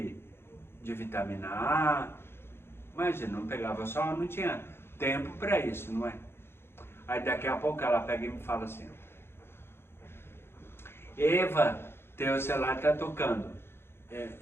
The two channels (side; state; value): right; late; 0.11 ms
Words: vitamina A, imagina, não pegava sol, não tinha tempo para isso, não é? Aí daqui a pouco ela pega e me fala assim, Eva, teu celular está tocando.